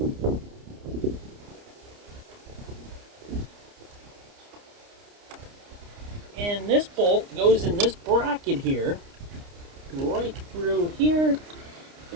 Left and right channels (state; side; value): late; left; 29 ms